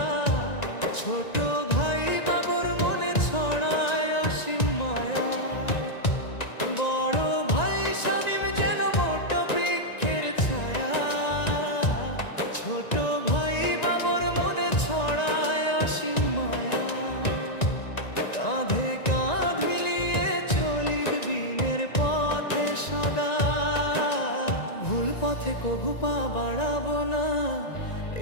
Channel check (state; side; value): late; right; 1.9 ms